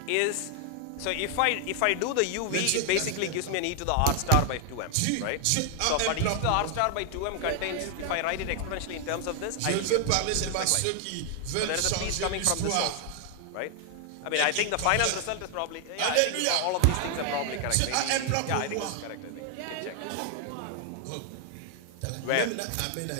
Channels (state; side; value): different; both; correlation 0.00